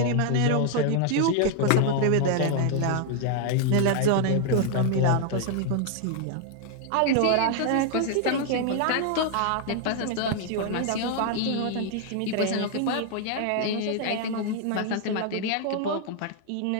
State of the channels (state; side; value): different; both; correlation 0.00